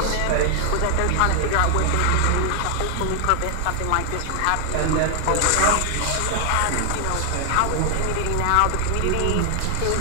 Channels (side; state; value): both; different; correlation 0.00